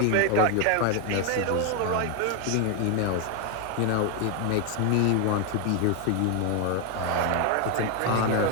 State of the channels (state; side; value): different; both; correlation 0.01